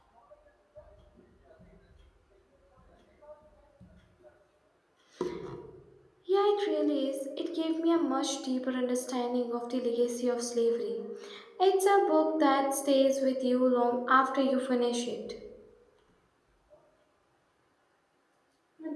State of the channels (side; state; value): both; identical; correlation 1.00